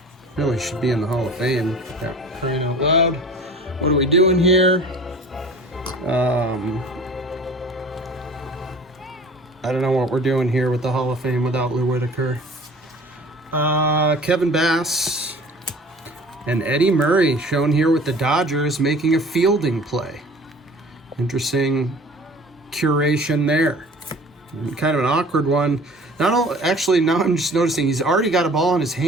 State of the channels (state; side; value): normal; both; correlation 0.45